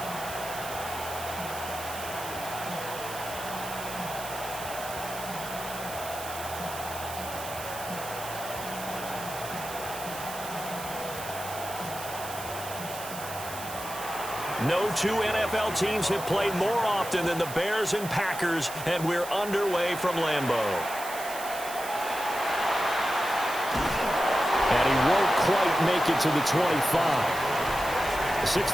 No two NFL teams have played more often than the Bears and Packers, and we're underway from Lambeau. And he won't quite make it to the 25.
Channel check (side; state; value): right; noise; hiss, 11 dB below the sound